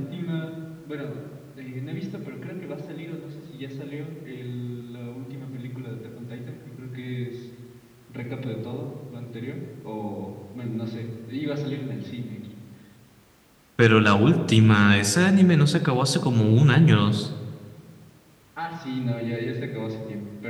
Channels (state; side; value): identical; both; correlation 1.00